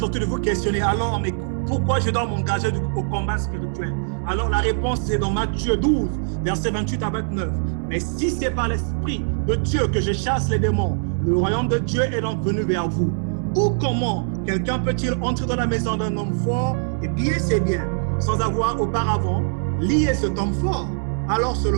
en train de vous questionner, alors mais pourquoi je dois m'engager au combat spirituel? Alors la réponse est dans Matthieu 12, verset 28 à 29. Mais si c'est par l'Esprit de Dieu que je chasse les démons, le royaume de Dieu est donc venu vers vous. Ou comment quelqu'un peut-il entrer dans la maison d'un homme fort et piller ses biens sans avoir auparavant lié cet homme fort? Alors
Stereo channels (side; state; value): left; silent; 64 dB below the other